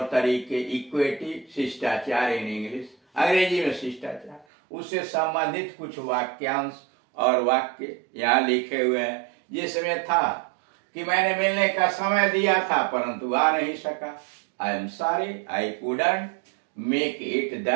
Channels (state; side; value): drops out; left; at 4.5 s